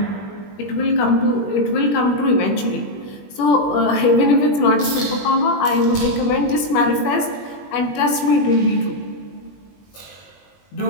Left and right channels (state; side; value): late; right; 20 ms